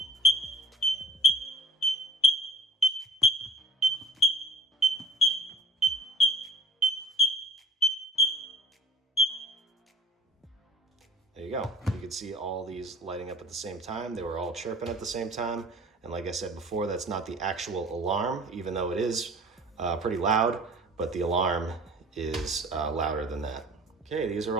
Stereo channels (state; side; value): normal; both; correlation 0.46